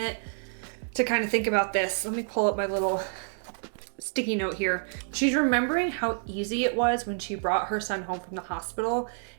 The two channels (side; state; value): left; silent; digital silence